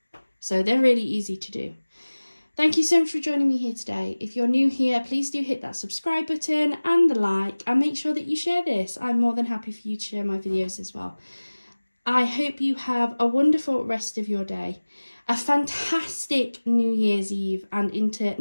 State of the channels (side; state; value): both; inverted; correlation -1.00